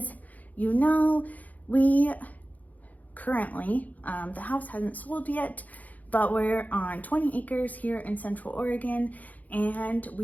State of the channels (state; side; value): late; right; 0.078 ms